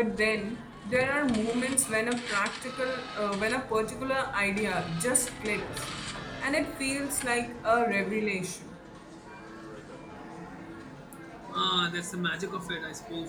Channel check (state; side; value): identical; both; correlation 1.00